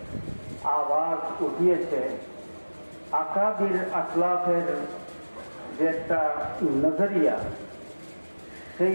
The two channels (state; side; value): inverted; both; correlation -1.00